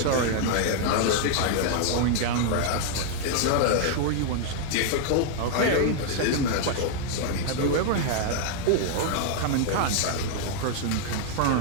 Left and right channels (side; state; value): both; different; correlation 0.00